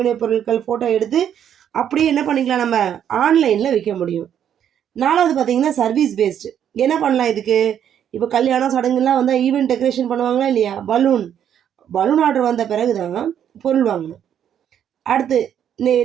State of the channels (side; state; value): left; quieter; 9.4 dB